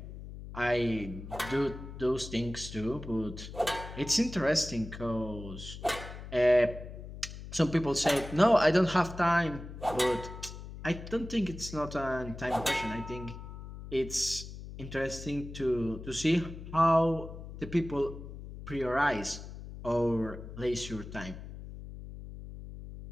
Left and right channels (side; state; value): left; noise; hum, 12 dB below the sound